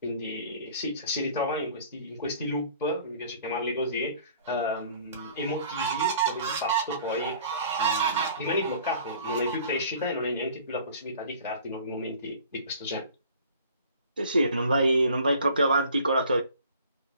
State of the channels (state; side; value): inverted; both; correlation -0.49